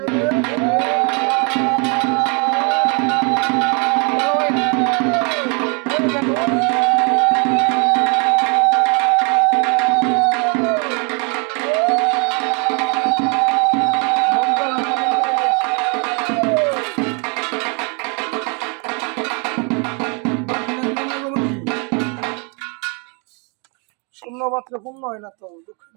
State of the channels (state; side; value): quieter; left; 34.7 dB